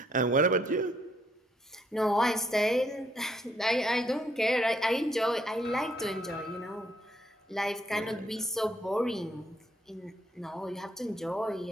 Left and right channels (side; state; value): both; normal; correlation 0.71